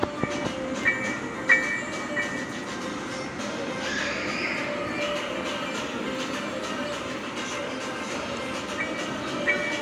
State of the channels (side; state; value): both; identical; correlation 1.00